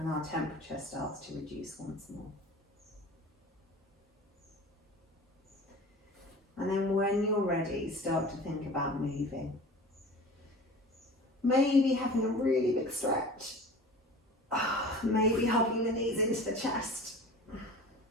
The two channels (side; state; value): both; normal; correlation 0.39